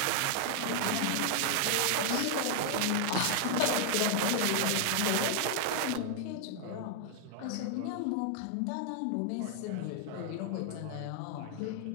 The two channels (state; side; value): different; both; correlation 0.00